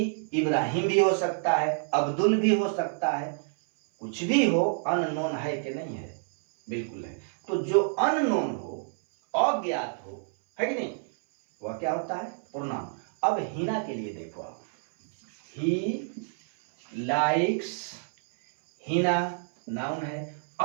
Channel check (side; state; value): left; silent; 59 dB below the other